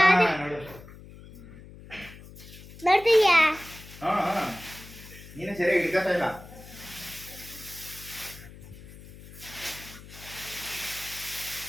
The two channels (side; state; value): left; noise; hum, 17 dB below the sound